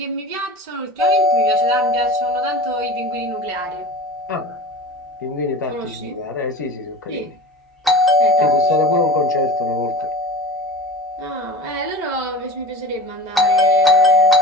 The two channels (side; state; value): both; normal; correlation 0.35